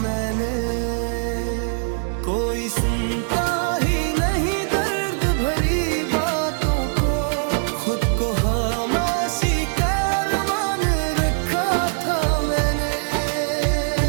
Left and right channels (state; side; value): silent; left; 64 dB below the other